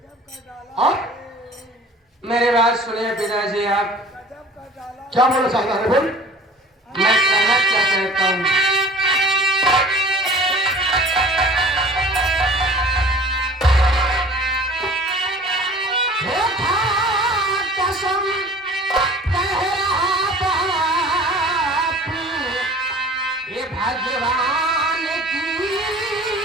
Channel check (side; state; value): both; normal; correlation 0.46